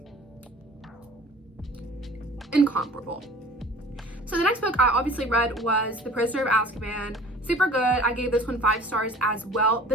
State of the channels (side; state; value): both; normal; correlation 0.46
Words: incomparable. So the next book I obviously read was The Prisoner of Azkaban. Super good. I gave this one 5 stars as well.